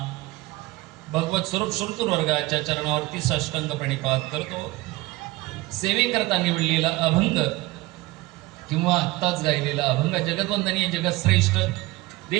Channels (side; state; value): left; quieter; 20.1 dB